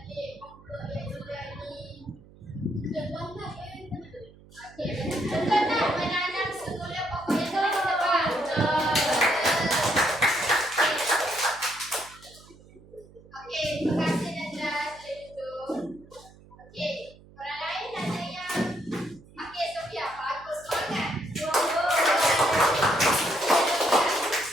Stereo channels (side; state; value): right; noise; hum, 23 dB below the sound